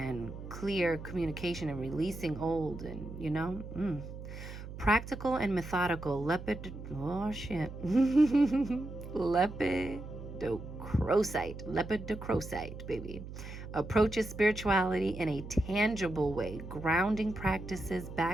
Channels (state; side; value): noise; right; hum, 11 dB below the sound